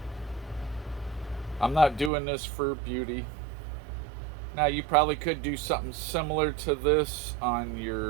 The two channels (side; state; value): left; drops out; at 2.1 s